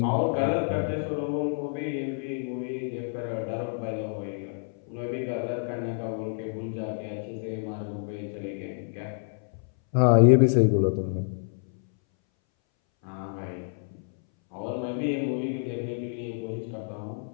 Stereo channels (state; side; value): silent; right; 59 dB below the other